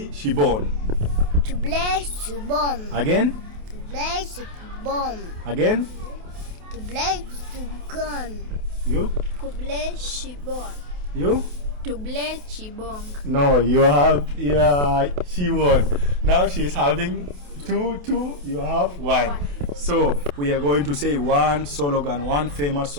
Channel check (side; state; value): left; late; 28 ms